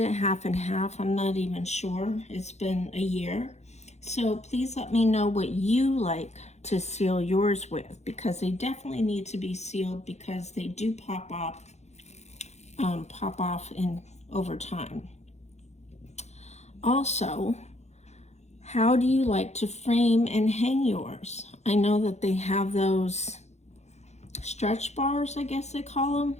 it half and half. I'm not even sure. It's been a year. So please let me know what you like to seal yours with, because they definitely need to be sealed because they do pop off in over time. Also, how do you like to frame and hang yours? I know that they have those stretch bars, I guess they call them.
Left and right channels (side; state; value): right; late; 0.32 ms